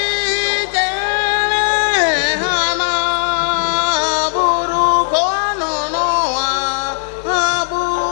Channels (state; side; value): silent; right; digital silence